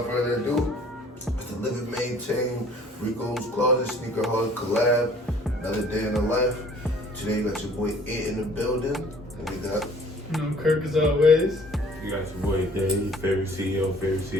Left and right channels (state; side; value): normal; both; correlation 0.54